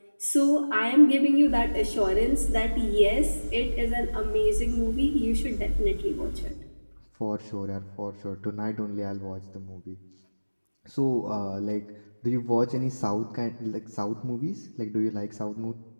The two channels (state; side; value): inverted; both; correlation -1.00